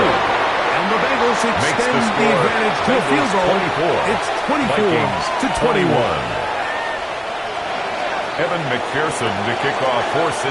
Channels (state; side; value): identical; both; correlation 1.00